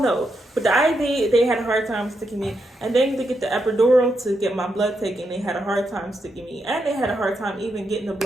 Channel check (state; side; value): normal; both; correlation 0.82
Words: know. But the IV, they had a hard time sticking me. And then to get the epidural to get my blood taken, they had a hard time sticking me. And they had a hard time even getting the